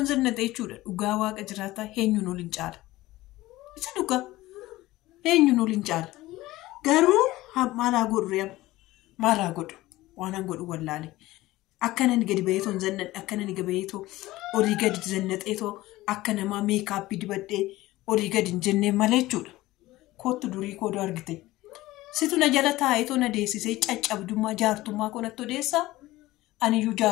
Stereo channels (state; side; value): quieter; right; 17.7 dB